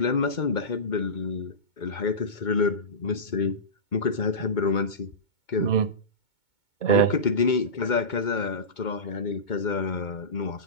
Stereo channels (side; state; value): right; late; 2.2 ms